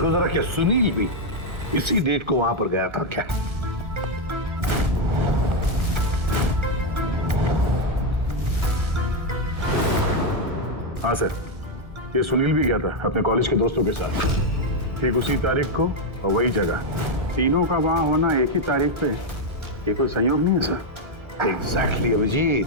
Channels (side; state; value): left; late; 1.4 ms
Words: जरा, क्या सुनील भी इसी डेट को वहां पर गया था क्या? हाँ सर, ये सुनील भी गया था अपने कॉलेज के दोस्तों के साथ, ठीक उसी तारीख को और वही जगह। तीनों का वहां होना एक ही तारीख पे, ये कोई संयोग नहीं है सर? एग्जैक्टली अभिजीत,